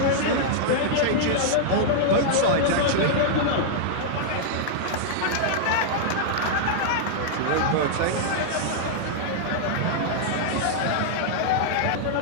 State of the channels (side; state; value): both; different; correlation -0.01